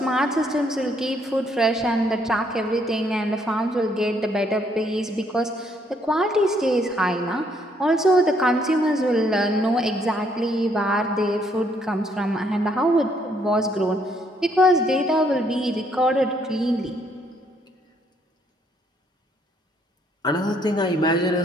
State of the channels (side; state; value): both; normal; correlation 0.69